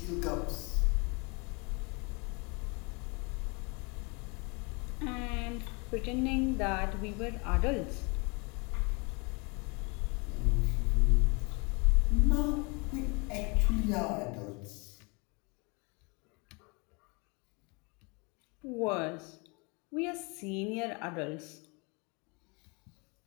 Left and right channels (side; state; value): right; quieter; 30.7 dB